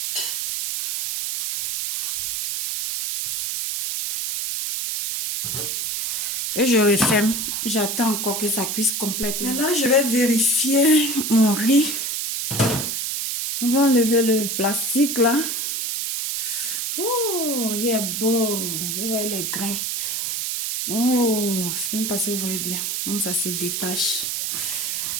Et je referme. J'attends encore que ça cuise complètement. Et là, je vais vérifier mon riz. On va enlever le plastique là. Oh, il est beau. Vous voyez les grains. Oh, je ne sais même pas si vous voyez bien. Bon, ça se détache.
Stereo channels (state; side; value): noise; right; hiss, 1 dB below the sound